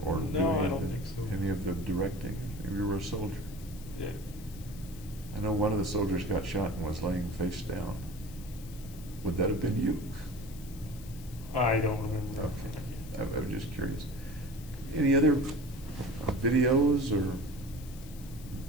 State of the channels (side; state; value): left; noise; hiss, 19 dB below the sound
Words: or do No, any I of don't the- think so. Any of the directing? You were a soldier. Yeah. I know one of the soldiers got shot and was laying face down. Would that have been you? I don't remember. Okay. I was just curious. Any other videos or